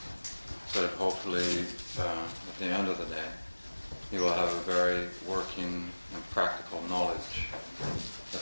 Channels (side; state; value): both; inverted; correlation -1.00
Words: so that hopefully at the end of the day you will have a very working and practical knowledge